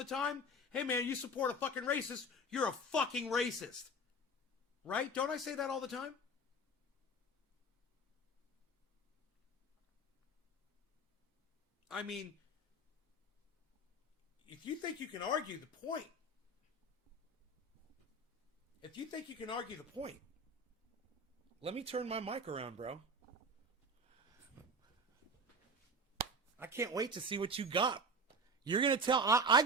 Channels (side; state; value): both; normal; correlation 0.29